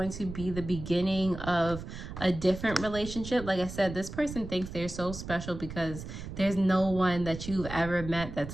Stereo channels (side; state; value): right; noise; rumble, 10 dB below the sound